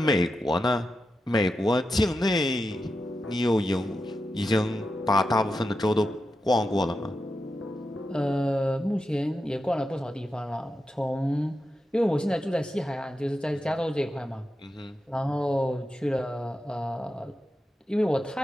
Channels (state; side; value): normal; both; correlation 0.89